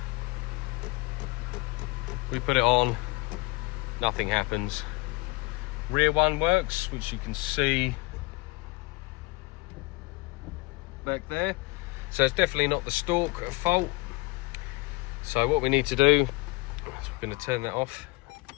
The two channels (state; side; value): quieter; right; 25.0 dB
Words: We put it on, nothing happens. Rear one works, which you can see back there. So it's definitely not the stalk at fault. So what we need to do is we're going to turn that off.